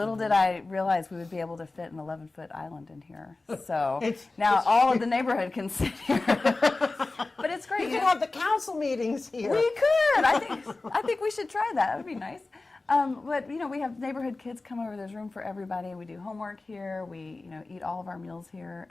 did I realize we would be able to fit an 11-foot island in here. So now all of the neighborhood can sit here. But it's great. You can have the council meetings here. We could. I think we should try that. That would be nice. But we have neighborhood kids come over. There's room for everybody. We do homework here. We eat all of our meals here,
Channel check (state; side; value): quieter; right; 3.4 dB